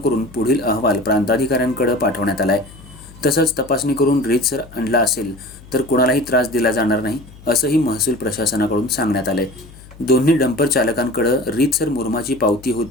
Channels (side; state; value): left; noise; hum, 21 dB below the sound